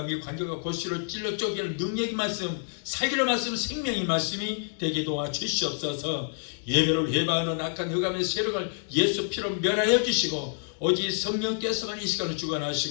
관절과 골수를 찔러 쪼개는 능력의 말씀, 살기로 말씀, 생명의 말씀이 되게 도와주시옵소서. 예배를 회방하는 악한 흑암의 세력을 예수 피로 멸하여 주시고 오직 성령께서만 이 시간을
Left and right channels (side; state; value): right; silent; digital silence